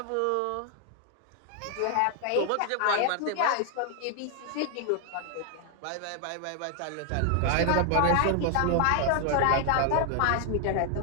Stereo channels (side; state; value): both; different; correlation 0.00